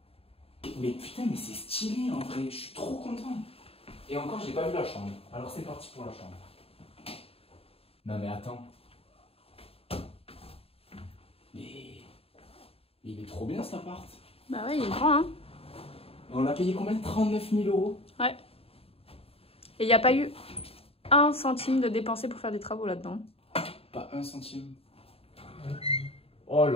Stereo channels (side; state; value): right; late; 0.28 ms